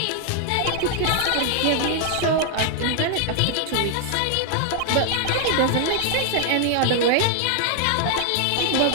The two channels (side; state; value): both; different; correlation 0.00